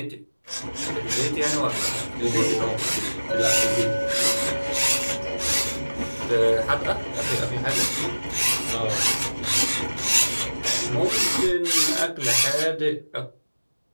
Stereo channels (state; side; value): inverted; both; correlation -1.00